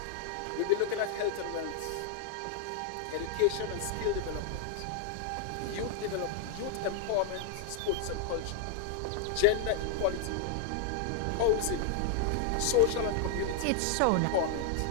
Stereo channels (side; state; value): both; different; correlation 0.00